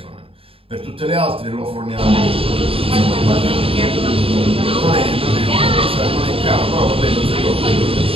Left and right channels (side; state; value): left; late; 0.27 ms